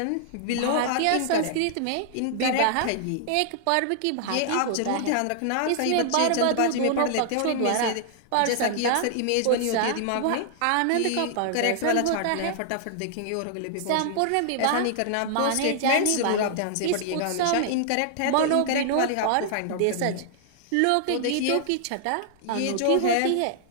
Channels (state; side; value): different; both; correlation -0.01